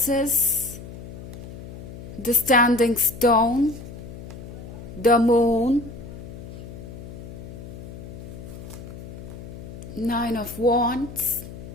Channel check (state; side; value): noise; left; hum, 12 dB below the sound